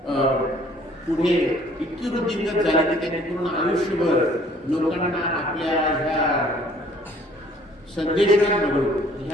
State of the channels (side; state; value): both; normal; correlation 0.57